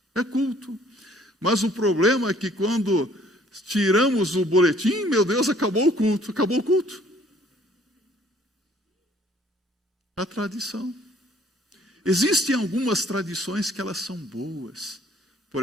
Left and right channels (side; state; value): both; normal; correlation 0.59